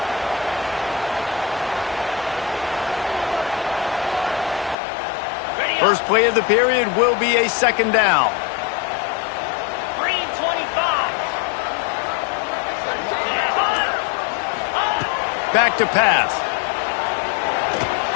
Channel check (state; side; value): drops out; right; at 4.8 s